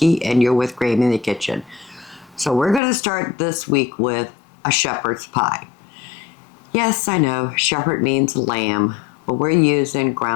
and you're with Grammy in the Kitchen. So we're going to start this week with a shepherd's pie. Yes, I know, shepherd means lamb, but we're using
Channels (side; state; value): right; drops out; at 2.8 s